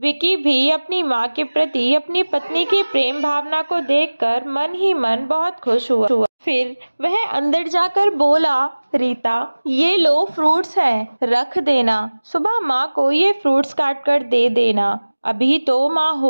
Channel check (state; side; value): inverted; both; correlation -1.00